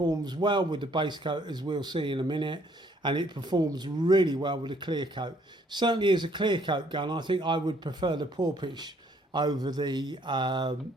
well with the base coat, as we'll see in a minute, and it performs really well with the clear coat. Certainly as a clear coat gun, I think I would prefer the Porpoise over the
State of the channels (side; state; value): both; normal; correlation 0.64